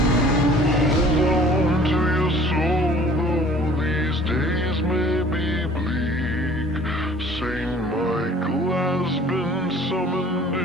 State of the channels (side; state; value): both; normal; correlation 0.51